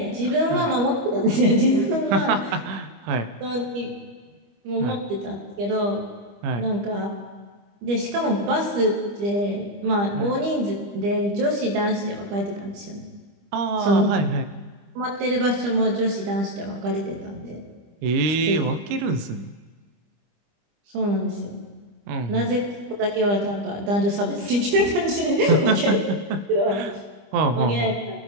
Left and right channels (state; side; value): late; left; 25 ms